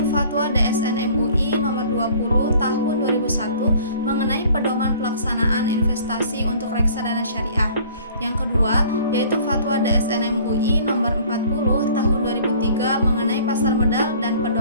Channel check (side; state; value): both; inverted; correlation -0.51